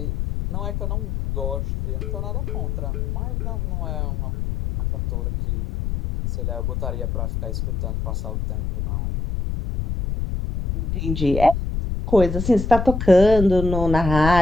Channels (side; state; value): left; noise; rumble, 2 dB below the sound